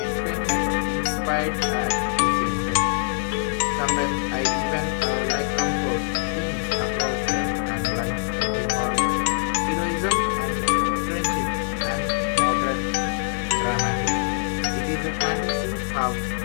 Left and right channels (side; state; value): right; silent; digital silence